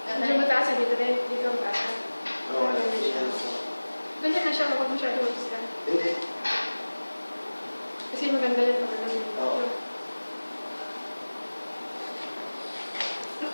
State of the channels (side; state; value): both; inverted; correlation -1.00